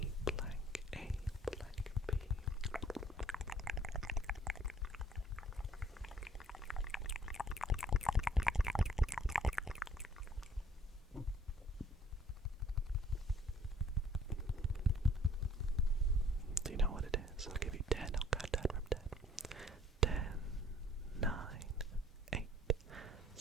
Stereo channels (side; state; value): both; normal; correlation 0.58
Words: blank A blank B. Do you know what it is? I'll give you 10. I'll count down from 10. 10, 9, 8,